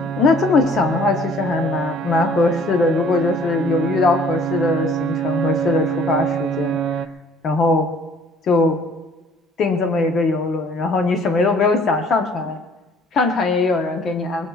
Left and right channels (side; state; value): both; normal; correlation 0.55